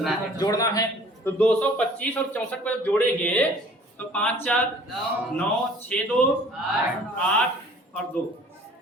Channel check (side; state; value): both; normal; correlation 0.51